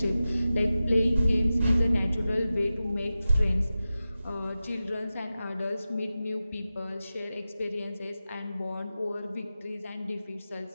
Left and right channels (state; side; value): inverted; both; correlation -0.94